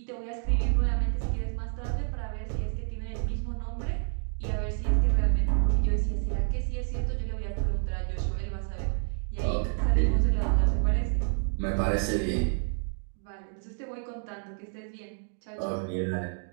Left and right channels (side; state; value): left; silent; 58 dB below the other